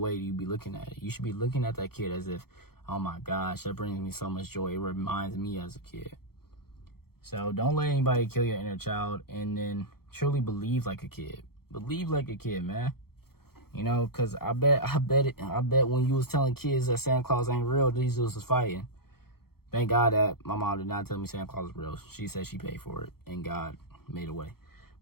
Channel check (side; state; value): right; late; 0.94 ms